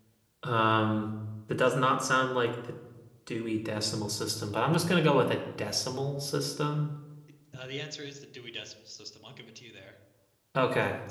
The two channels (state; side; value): identical; both; correlation 1.00